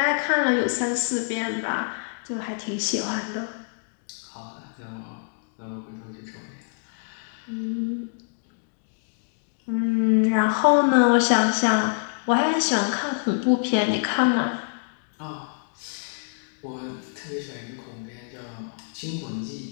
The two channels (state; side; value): silent; right; digital silence